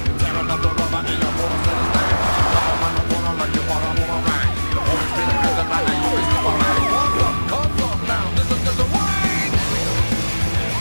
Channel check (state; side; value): inverted; both; correlation -1.00